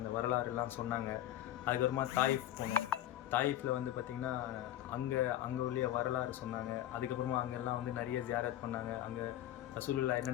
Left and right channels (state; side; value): quieter; right; 12.9 dB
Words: வரலாறுலாம் சொன்னாங்க. அதுக்கப்புறமா தாயிஃப் போனோம். தாயிஃபில் வந்து பார்த்திங்கன்னா அங்கே உள்ள வரலாறு சொன்னாங்க. அதுக்கப்புறமா அங்கெல்லாம் வந்து நிறைய ஜியாரத் பண்ணாங்க. அங்கே ரசூலுல்லாஹ்